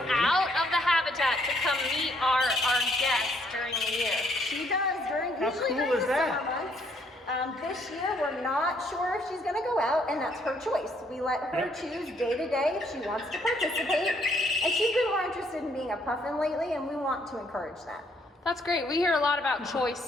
out of the habitat to come meet our guests during the year. She does during How usually cool during is the that? summer months. This year we're not sure if she's going to go out, and that's her choice. We let her Yep. choose day to day if she wants to participate. And she's been more interested in being a puffin lately, and we want to encourage that. That's great. We hear a lot about choice,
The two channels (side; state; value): both; normal; correlation 0.68